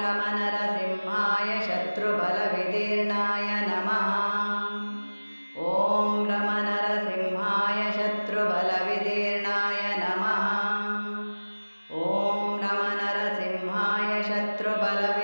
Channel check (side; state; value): both; inverted; correlation -1.00